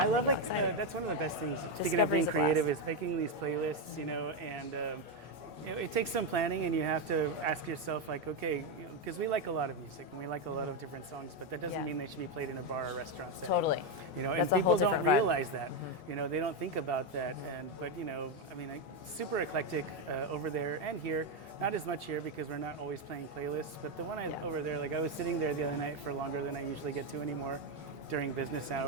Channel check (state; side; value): normal; both; correlation 0.06